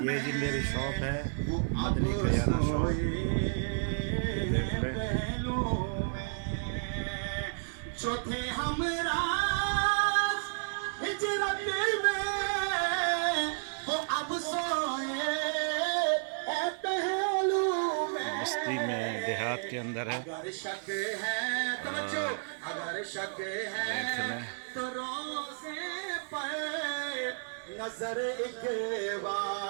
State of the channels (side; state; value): left; silent; digital silence